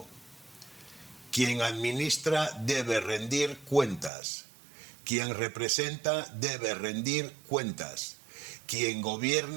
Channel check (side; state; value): left; drops out; at 4.1 s